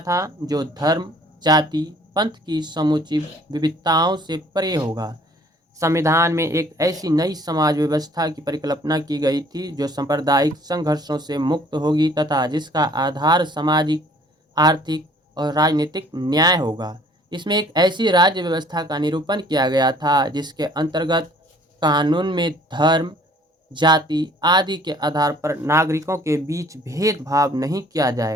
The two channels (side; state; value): both; normal; correlation 0.56